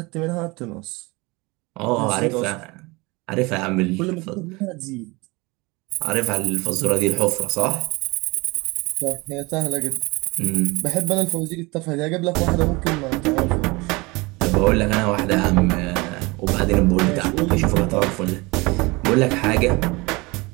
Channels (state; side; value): quieter; left; 24.5 dB